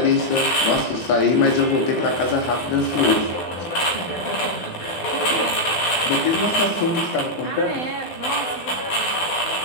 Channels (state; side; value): late; right; 12 ms